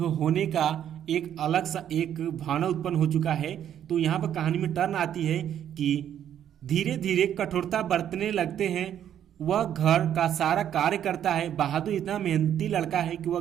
का एक अलग सा एक भावना उत्पन्न हो चुका है। तो यहाँ पर कहानी में टर्न आती है कि धीरे धीरे कठोरता बरतने लगते हैं। वह घर का सारा कार्य करता है। बहादुर इतना मेहनती लड़का है कि वह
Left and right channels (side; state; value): left; quieter; 10.1 dB